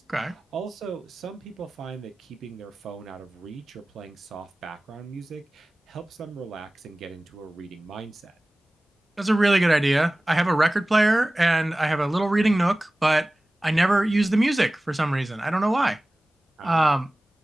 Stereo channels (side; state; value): both; normal; correlation 0.97